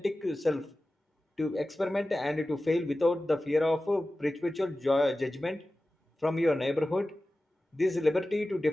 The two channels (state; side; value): normal; both; correlation 0.95